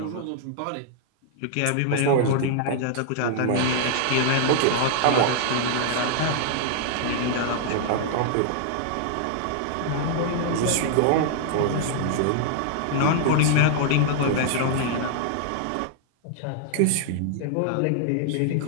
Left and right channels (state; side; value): different; both; correlation -0.01